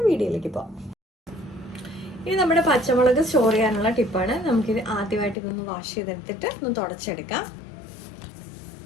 വീഡിയോയിലേക്ക് പോകാം. ഇനി നമ്മുടെ പച്ചമുളക് സ്റ്റോർ ചെയ്യാനുള്ള ടിപ്പാണ്. നമുക്കിത് ആദ്യമായിട്ട് ഇതൊന്ന് വാഷ് ചെയ്തെടുത്തിട്ട് ഒന്ന് തുടച്ചെടുക്കാം.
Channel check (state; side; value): drops out; right; at 5.4 s